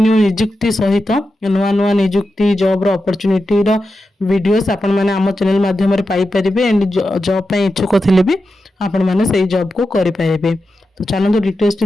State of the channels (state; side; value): normal; both; correlation 0.90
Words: निजुक्ति सहित नुआ नुआ निजुक्ति जॉब रो अपॉर्चुनिटी रो वीडियोस आपण माने हम चैनल माध्यम रे पाई परिबे एंड जॉब पई इच्छुक थिले भी आपण माने सेही जॉब को करि परिबे तो चलंतु डिटेल्स टी